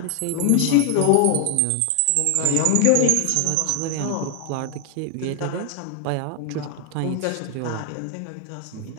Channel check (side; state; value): both; different; correlation 0.00